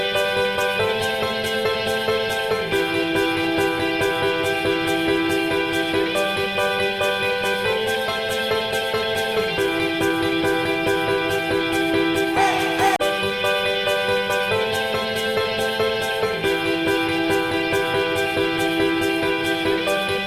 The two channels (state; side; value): identical; both; correlation 1.00